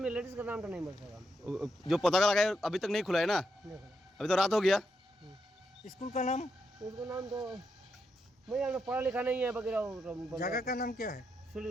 लेडीज का नाम तो नहीं बोल सकता जो पता का लगाए अभी तक नहीं खुला है ना देखो अभी तो रात हो गया स्कूल का नाम उसका नाम तो मैं यहाँ पढ़ा लिखा नहीं है वगैरह जगह का नाम क्या है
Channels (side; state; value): both; normal; correlation 0.82